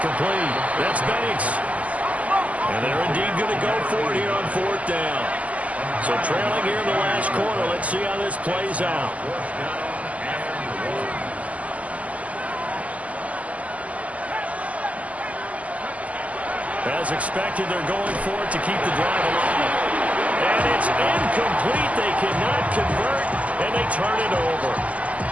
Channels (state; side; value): late; left; 0.071 ms